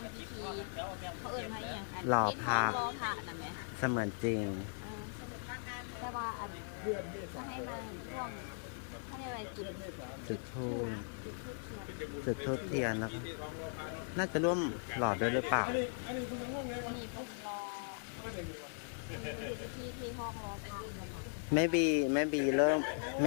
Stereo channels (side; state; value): right; silent; digital silence